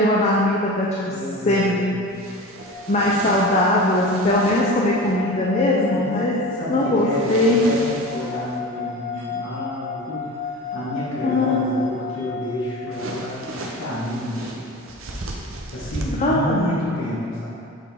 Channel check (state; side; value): normal; both; correlation 0.33